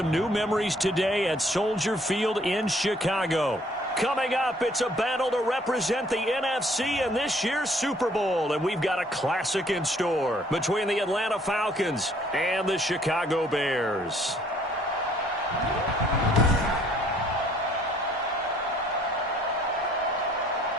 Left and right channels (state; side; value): normal; both; correlation 0.61